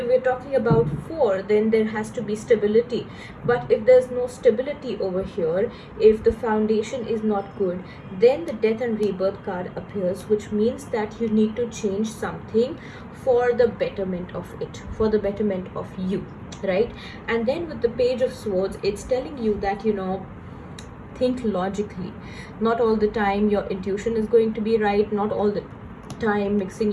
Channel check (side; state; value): both; identical; correlation 1.00